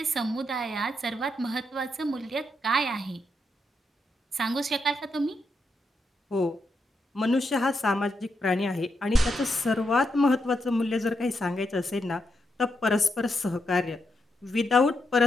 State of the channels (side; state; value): both; normal; correlation 0.82